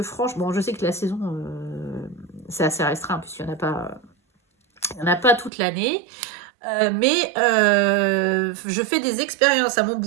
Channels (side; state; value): left; drops out; at 5.5 s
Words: franchement, je sais que la saison, c'est assez restreint, puisqu'il n'y en a pas toute l'année. Mais je fais des expériences à mon